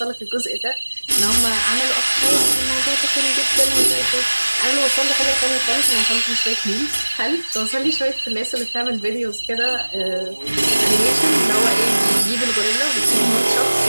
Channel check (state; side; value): inverted; both; correlation -1.00